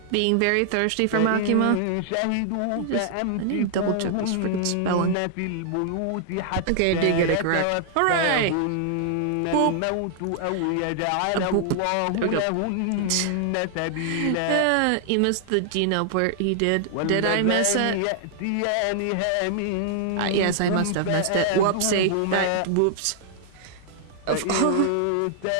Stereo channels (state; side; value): different; both; correlation -0.01